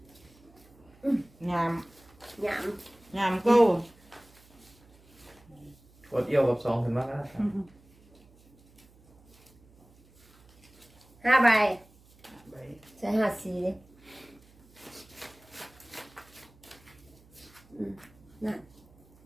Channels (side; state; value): right; noise; hum, 27 dB below the sound